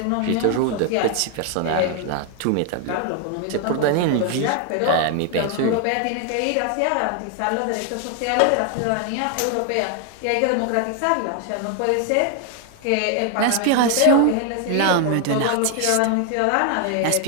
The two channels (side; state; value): both; different; correlation 0.00